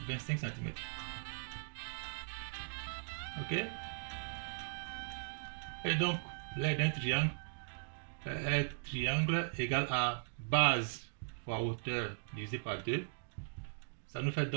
25 cm. Ok? Et donc l'aire d'un triangle est triangle égal à base fois hauteur divisé par 2. Ça nous fait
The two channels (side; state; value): left; silent; digital silence